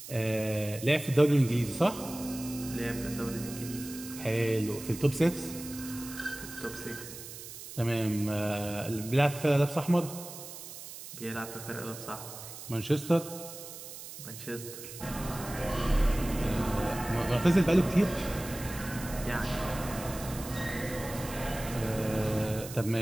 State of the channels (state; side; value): noise; right; hiss, 12 dB below the sound